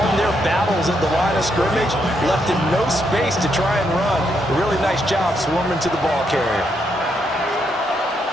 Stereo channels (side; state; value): both; normal; correlation 0.77